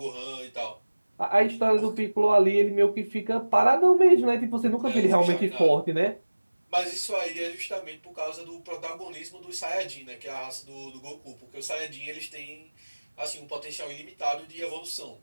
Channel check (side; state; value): both; inverted; correlation -1.00